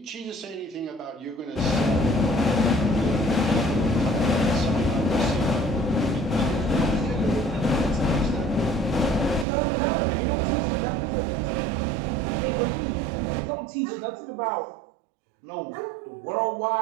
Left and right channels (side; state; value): left; drops out; at 9.5 s